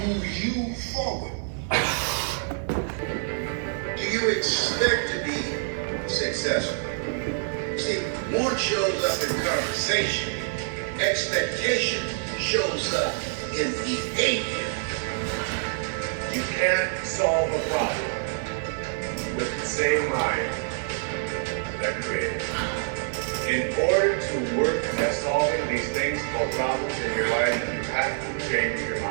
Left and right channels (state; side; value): silent; left; 60 dB below the other